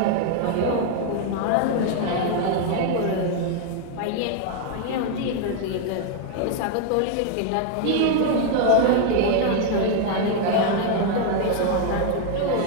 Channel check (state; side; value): different; both; correlation 0.00